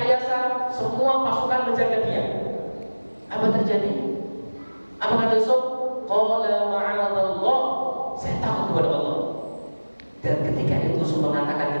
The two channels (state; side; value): inverted; both; correlation -1.00